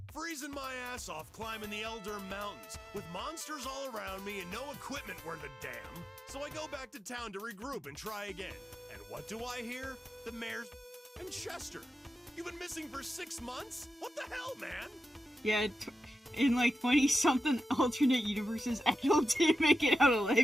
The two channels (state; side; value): normal; both; correlation 0.91